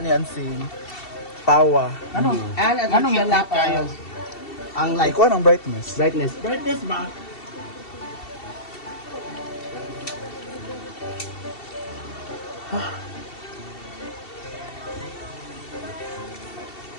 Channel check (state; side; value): late; right; 2.7 ms